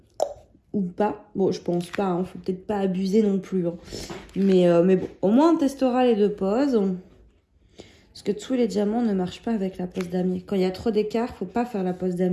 ou pas. Bon, je pense pas, hein, faut peut-être pas abuser non plus. Hein. Mais bon, au moins on testera les deux poses. Parce que tous les diamants ne marchent pas avec la pose damier. Quand il y a trop d'écart, faut pas faire la pose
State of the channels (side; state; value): both; identical; correlation 1.00